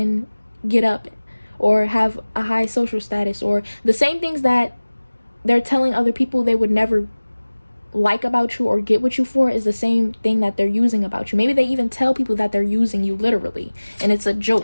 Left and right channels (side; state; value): both; inverted; correlation -1.00